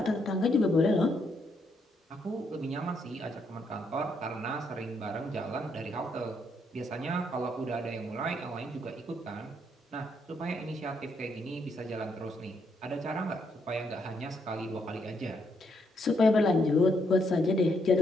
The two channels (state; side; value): normal; both; correlation 0.75